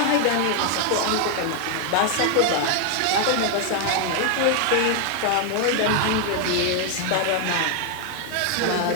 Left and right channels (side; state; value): both; different; correlation 0.00